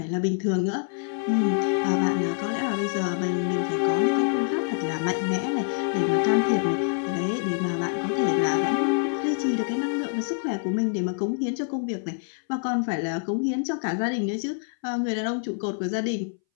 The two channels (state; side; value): silent; right; 61 dB below the other